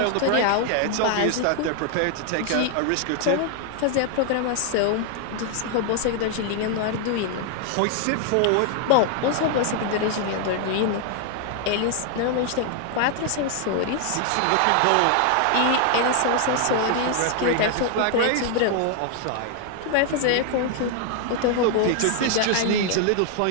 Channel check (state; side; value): different; both; correlation 0.00